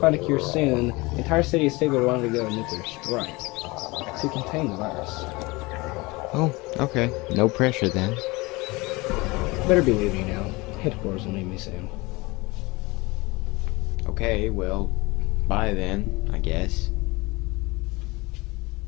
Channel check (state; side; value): quieter; right; 23.7 dB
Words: a cure soon, the entire city of Stigler will undergo a nuclear strike to contain the virus. Oh, okay. No pressure then. Better be leaving now. Headquarters will need me soon. Okay, well, bye then, I guess.